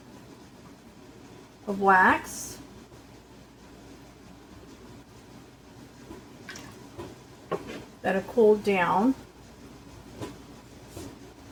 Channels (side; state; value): both; identical; correlation 1.00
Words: of wax. That have cooled down.